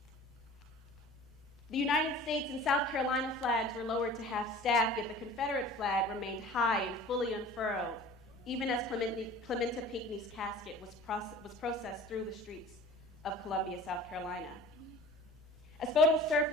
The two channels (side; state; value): both; normal; correlation 0.43